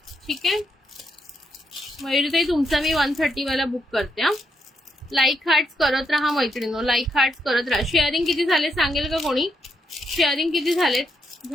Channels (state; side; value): normal; both; correlation 0.79